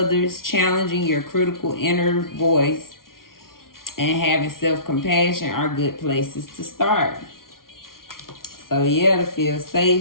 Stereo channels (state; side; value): late; right; 0.92 ms